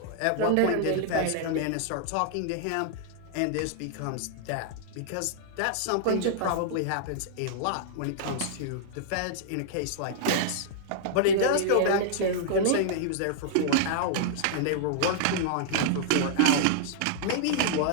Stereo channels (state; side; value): different; both; correlation -0.01